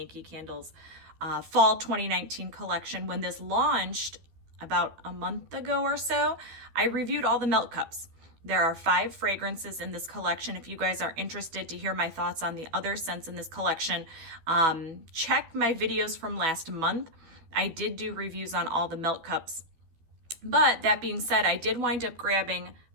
Candle's Fall 2019 collection, when this launched about a month ago or so, I reviewed all the melt cups. There are 5 fragrances in this collection. If you guys are interested to hear my thoughts on the other scents in this collection, check my videos from last month. I did do reviews on all the melt cups. But that being said, I did wind up grabbing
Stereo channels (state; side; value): late; left; 12 ms